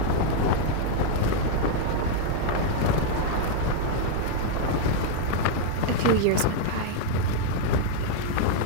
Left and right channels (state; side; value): different; both; correlation -0.01